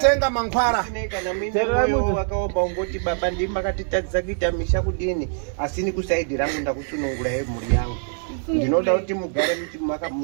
mankhwara. Kana mimoyo wakaomba ungoti baba ndimi makatitadzisa kuita misha kudini asi ni kusaidi rangu ndakusunungura mhuri yangu. Ndinoda kuti mugare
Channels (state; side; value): silent; left; 63 dB below the other